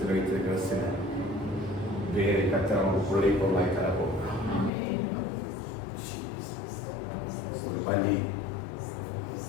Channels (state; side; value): drops out; right; at 4.7 s